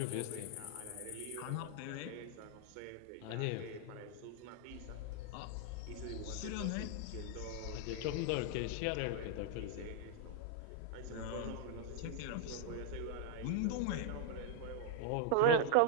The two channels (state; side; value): different; both; correlation 0.00